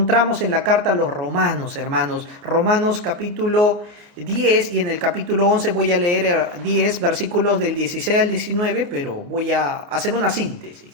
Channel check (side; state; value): left; late; 29 ms